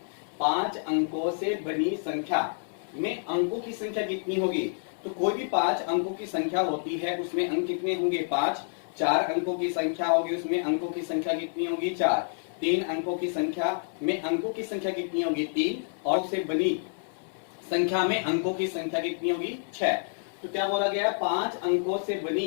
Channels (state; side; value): silent; right; 59 dB below the other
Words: 5 अंकों से बनी संख्या में अंकों की संख्या कितनी होगी। तो कोई भी 5 अंकों की संख्या होती है उसमें अंक कितने होंगे 5। 4 अंकों की संख्या होगी उसमें अंकों की संख्या कितनी होगी 4। 3 अंकों की संख्या में अंकों की संख्या कितनी होगी 3 और उससे बनी संख्या में अंकों की संख्या कितनी होगी 6। तो क्या बोला गया 5 अंकों से